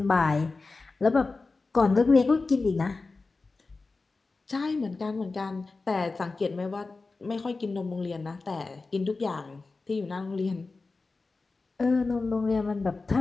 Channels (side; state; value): right; quieter; 3.8 dB